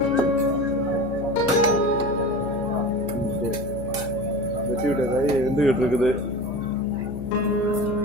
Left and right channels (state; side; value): noise; left; hum, 10 dB below the sound